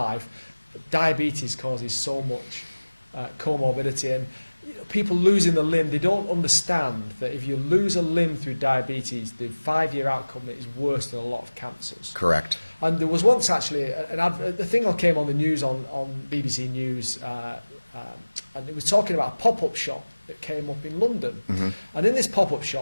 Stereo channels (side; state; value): both; inverted; correlation -1.00